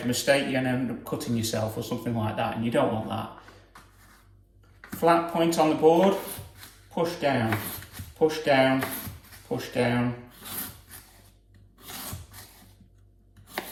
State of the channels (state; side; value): identical; both; correlation 1.00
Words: a mistake, you're going to end up cutting yourself or something like that, and you don't want that. Flat point on the board, push down, push down, push down.